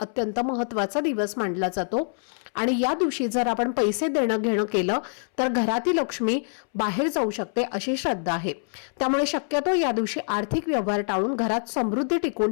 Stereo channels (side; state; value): right; silent; 61 dB below the other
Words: महत्त्वाचा दिवस मानला जातो आणि या दिवशी जर आपण पैसे देणं घेणं केलं तर घरातील लक्ष्मी बाहेर जाऊ शकते अशी श्रद्धा आहे. त्यामुळे शक्यतो या दिवशी आर्थिक व्यवहार टाळून घरात समृद्धी टिकवून